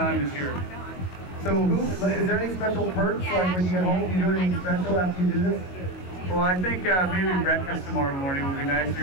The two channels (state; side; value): late; right; 22 ms